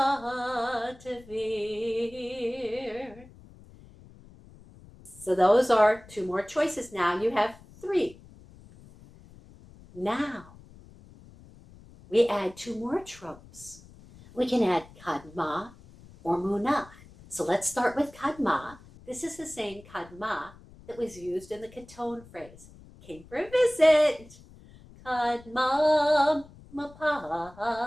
Tevir. So those are 2 more choices. Now you have 3. Now we add 2 more tropes. We can add Kadma or Munach. So let's start with Kadma. This is the same Kadma that was used in the Katon phrase. Came for a visit. Kadma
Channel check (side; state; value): left; noise; rumble, 22 dB below the sound